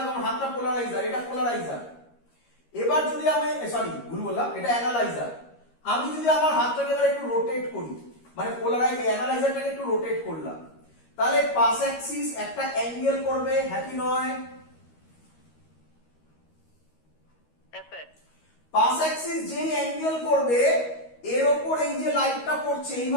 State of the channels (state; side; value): late; right; 13 ms